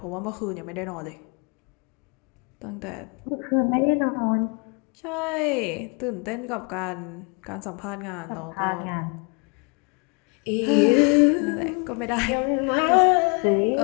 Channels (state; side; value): quieter; right; 34.6 dB